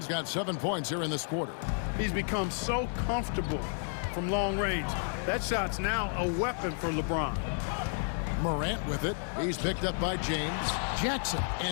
got 7 points here in this quarter. He's become so comfortable from long range. That shot's now a weapon for LeBron. Morant with it. He's picked up by James. Jackson,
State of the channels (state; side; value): silent; right; 57 dB below the other